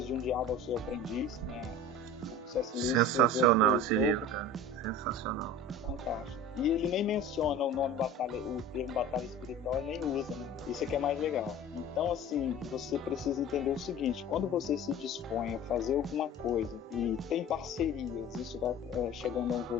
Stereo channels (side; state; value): both; normal; correlation 0.38